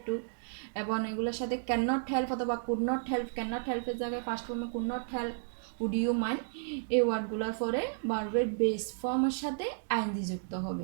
to এবং এগুলোর সাথে ক্যান নট হেল্প অথবা could not help, can not হেল্পের জায়গায় ফার্স্ট ফর্মে could not help, would you mind, এই ওয়ার্ডগুলোর পরে ভার্বের বেস ফর্মের সাথে আইএনজি যুক্ত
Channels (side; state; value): left; silent; digital silence